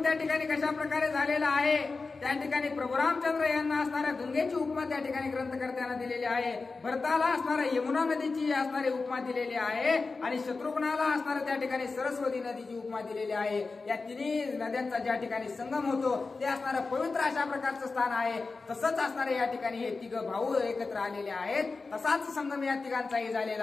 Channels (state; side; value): quieter; right; 4.0 dB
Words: त्या ठिकाणी कशा प्रकारे झालेला आहे त्या ठिकाणी प्रभू रामचंद्र यांना असणाऱ्या गंगेची उपमा त्या ठिकाणी ग्रंथकर्त्यांना दिलेली आहे. भरताला असणाऱ्या यमुना नदीची असणारी उपमा दिलेली आहे आणि शत्रुघ्नाला असणाऱ्या त्या ठिकाणी सरस्वती नदीची उपमा दिलेली आहे. या तिन्ही नद्यांचा ज्या ठिकाणी संगम होतो ते असणारं पवित्र अशा प्रकारचं स्थान आहे. तसंच असणारे या ठिकाणी हे तिघ भाऊ एकत्र आलेले आहेत, तसाच संगम या तिघांचाही